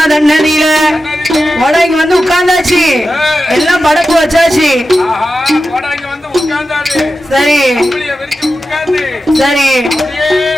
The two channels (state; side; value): normal; both; correlation 0.91